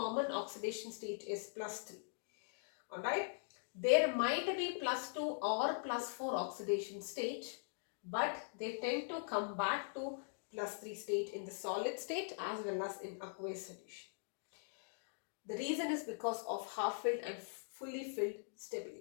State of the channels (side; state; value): right; silent; digital silence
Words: oxidation state is +3. Alright, there might be +2 or +4 oxidation state, but they tend to come back to +3 state in the solid state as well as in aqueous solution. The reason is because of half-filled and fully filled